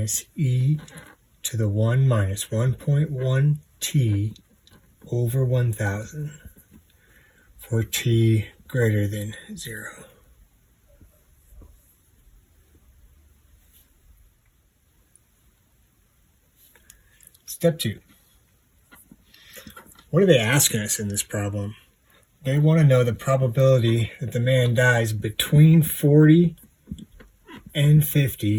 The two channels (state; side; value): identical; both; correlation 1.00